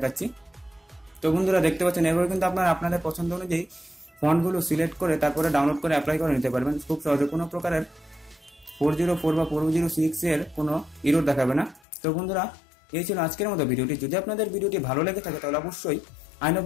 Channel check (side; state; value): right; drops out; at 11.8 s